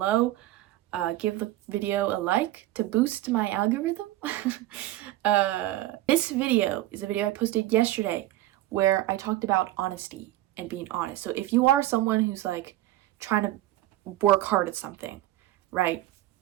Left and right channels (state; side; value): quieter; left; 15.4 dB